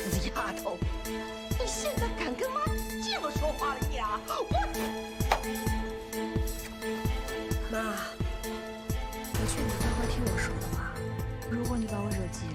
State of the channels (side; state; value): both; identical; correlation 1.00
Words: 丫头，你现在敢跟妈这么说话了呀？妈，我劝你乖乖听我说的话。如果你把我惹急